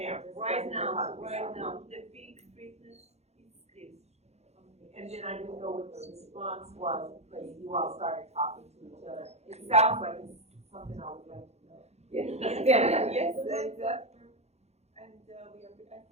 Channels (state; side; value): late; left; 0.31 ms